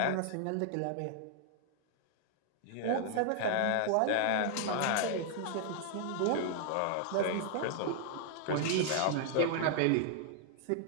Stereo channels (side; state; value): both; different; correlation 0.00